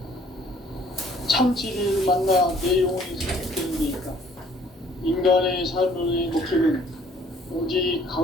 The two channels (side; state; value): both; normal; correlation 0.58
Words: 참 진리를 만나 내 영혼이 성숙되는 데 있다. 인간의 삶의 목적은 오직